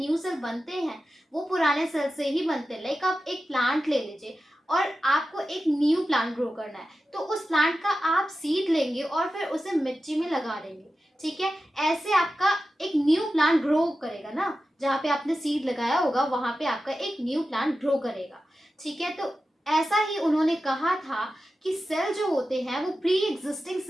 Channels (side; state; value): both; normal; correlation 0.92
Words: सेल बनते हैं, वो पुराने सेल से ही बनते हैं। लाइक आप एक प्लांट ले लीजिए और आपको एक न्यू प्लांट ग्रो करना है, तो उस प्लांट का आप सीड लेंगे और फिर उसे मिट्टी में लगा देंगे। ठीक है, ऐसे आपका एक न्यू प्लांट ग्रो करेगा ना, जहाँ पे आपने सीड लगाया होगा वहां पे आपका एक न्यू प्लांट ग्रो करेगा। ठीक है, तो ऐसा ही उन्होंने कहा था कि सेल जो होते हैं वो प्री एग्जिस्टिंग